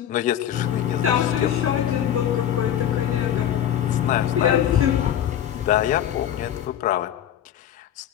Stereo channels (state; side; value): quieter; right; 10.4 dB